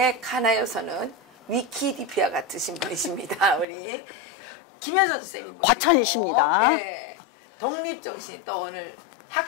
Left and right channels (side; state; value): right; drops out; at 3.7 s